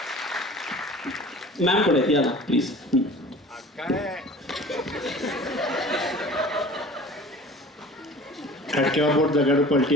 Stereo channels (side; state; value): both; normal; correlation 0.43